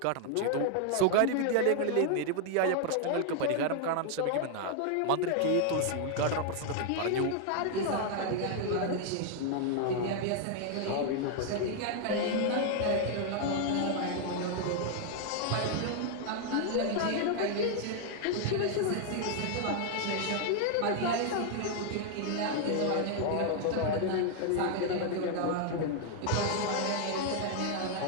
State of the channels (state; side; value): different; both; correlation 0.00